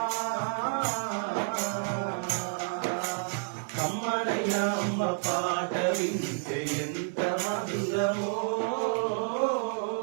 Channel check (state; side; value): silent; left; digital silence